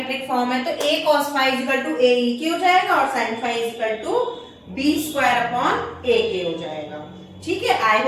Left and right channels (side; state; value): both; identical; correlation 1.00